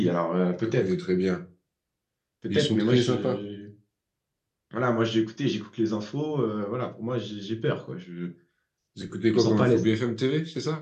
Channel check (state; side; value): identical; both; correlation 1.00